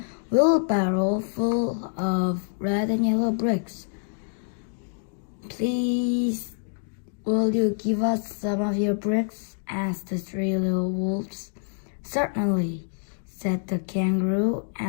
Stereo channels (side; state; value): right; silent; digital silence